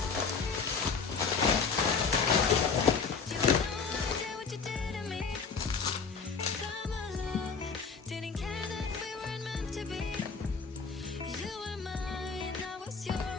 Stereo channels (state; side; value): quieter; right; 5.3 dB